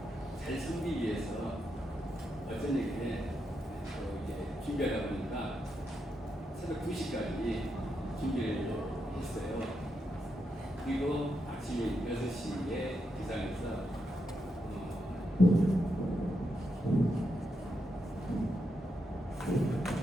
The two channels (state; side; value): normal; both; correlation 0.83